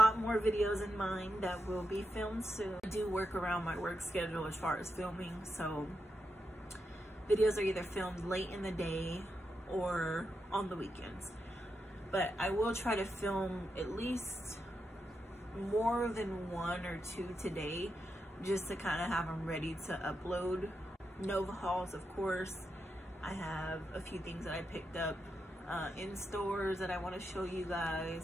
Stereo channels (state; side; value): normal; both; correlation 0.86